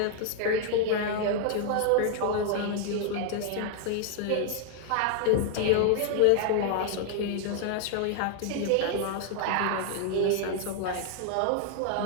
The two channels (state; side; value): different; both; correlation 0.00